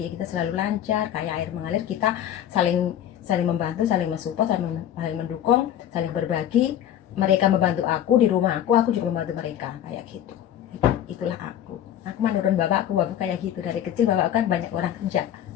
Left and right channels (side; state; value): right; quieter; 10.9 dB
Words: kita selalu lancar, kayak air mengalir. Kita saling saling membantu, saling mensupport, saling mendukung, saling berbagi. Mereka membantu aku di rumah aku juga membantu mereka, kayak gitu. Itulah aku mah nurun bapakku kayak gitu. Dari kecil bapak kan banyak orang kerja